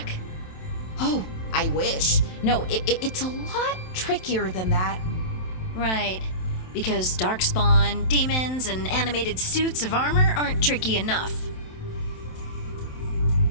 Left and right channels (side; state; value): right; late; 27 ms